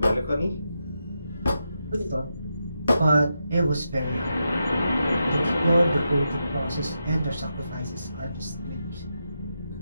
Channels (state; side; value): inverted; both; correlation -0.85